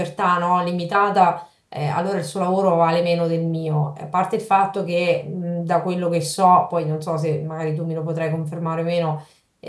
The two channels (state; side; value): identical; both; correlation 1.00